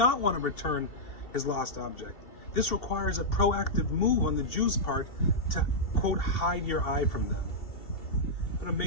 want to return his lost object. This requires a proactive move on the Jew's part to, quote, hide your eye from them. What an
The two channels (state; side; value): late; right; 2.7 ms